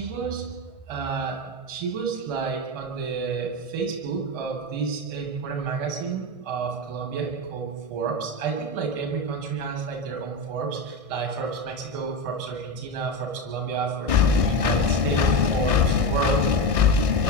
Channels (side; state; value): left; late; 1.6 ms